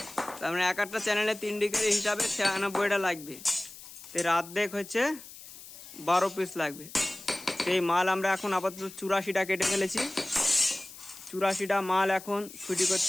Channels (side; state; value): left; noise; hiss, 16 dB below the sound